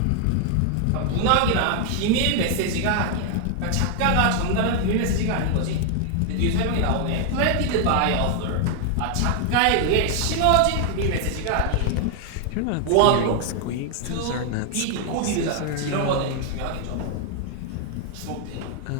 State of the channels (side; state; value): both; different; correlation 0.00